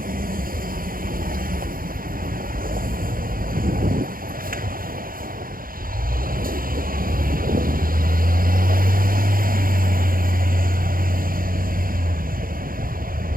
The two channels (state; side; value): late; left; 0.41 ms